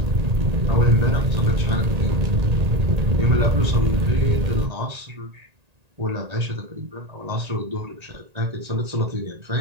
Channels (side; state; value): left; late; 1.8 ms